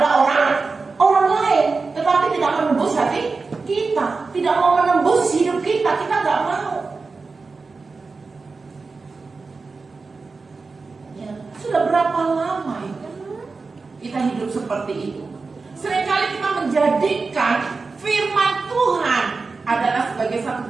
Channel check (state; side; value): quieter; left; 4.2 dB